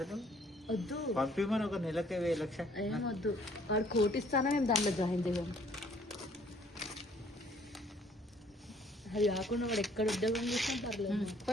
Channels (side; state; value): both; normal; correlation 0.60